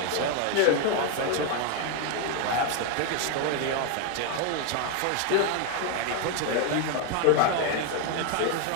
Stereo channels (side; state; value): both; different; correlation 0.01